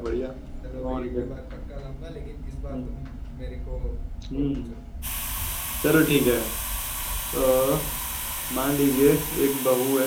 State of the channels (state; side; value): identical; both; correlation 1.00